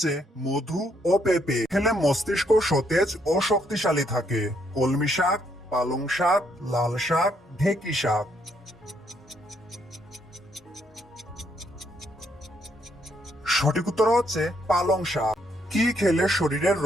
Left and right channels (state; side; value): normal; both; correlation 0.72